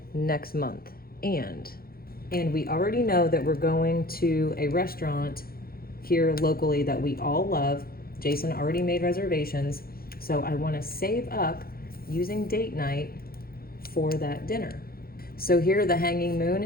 next month. And we already know that we're going to a restaurant here locally that we all love. Jason already made reservations. So I want to save up using date night for that dinner. So here the hanging moon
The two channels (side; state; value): right; late; 0.44 ms